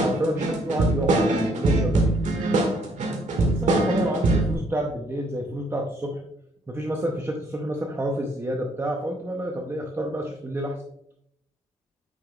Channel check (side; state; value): both; normal; correlation 0.67